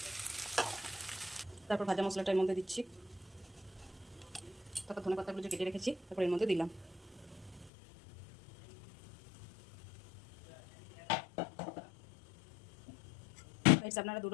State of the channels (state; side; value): drops out; right; at 7.7 s